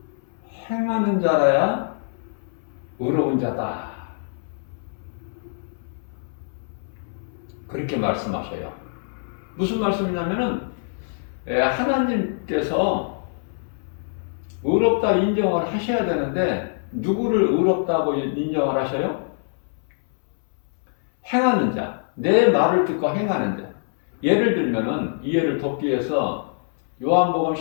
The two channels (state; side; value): silent; right; 62 dB below the other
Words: 행하는 자라야 의로운 자다. 그렇게 말씀하셔요. 무슨 말씀이냐면은 하나님께서 의롭다 인정을 하셔야 되는데 누구를 의롭다고 인정을 하셔요? 행하는 자. 내 말을 듣고 행하는 자. 예를 들면은 이해를 돕기 위해서 요한복음